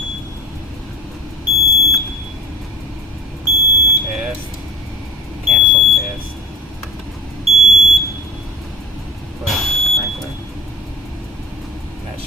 Test. Cancel test. Push sprinkler. That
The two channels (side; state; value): both; normal; correlation 0.39